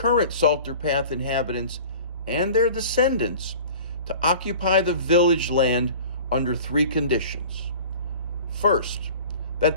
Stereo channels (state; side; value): inverted; both; correlation -0.42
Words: Salter Path inhabitants and their descendants to occupy the village land under 3 conditions. First, that